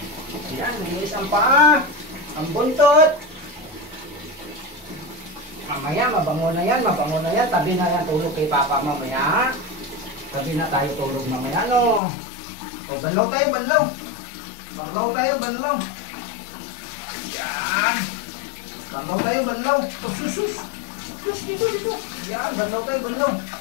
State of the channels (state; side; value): drops out; right; at 12.0 s